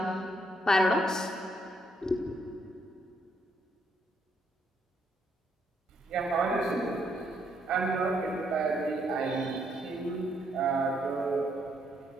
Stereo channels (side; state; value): both; normal; correlation 0.73